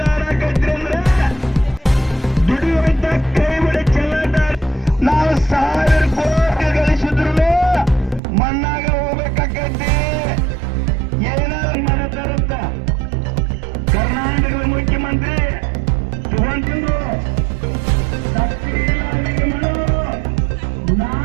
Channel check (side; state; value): left; drops out; at 8.2 s